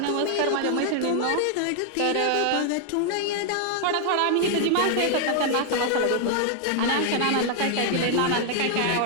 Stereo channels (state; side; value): different; both; correlation 0.00